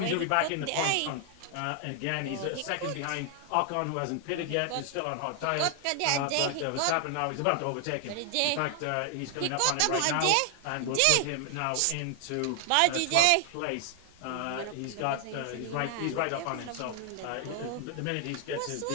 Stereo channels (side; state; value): both; different; correlation 0.00